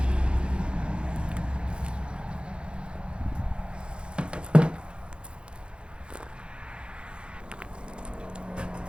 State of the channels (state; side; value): late; left; 0.055 ms